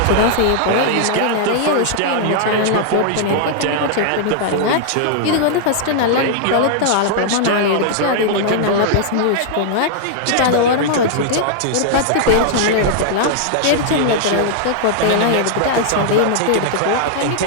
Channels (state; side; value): different; both; correlation -0.01